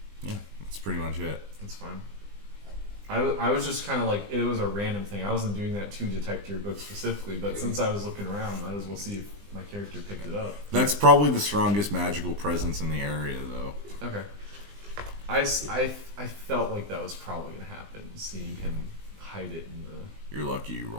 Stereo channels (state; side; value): late; left; 20 ms